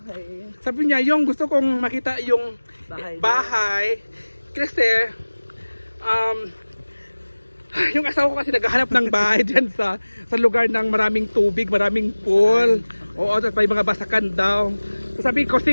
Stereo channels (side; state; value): both; inverted; correlation -1.00